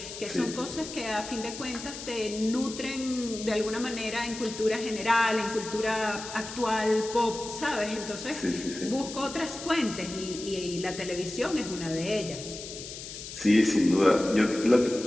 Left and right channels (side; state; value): left; noise; hiss, 11 dB below the sound